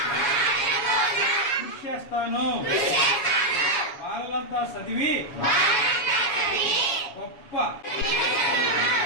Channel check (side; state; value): right; late; 7.2 ms